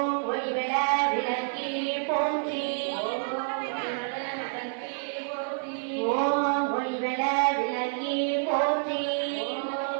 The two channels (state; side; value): silent; left; digital silence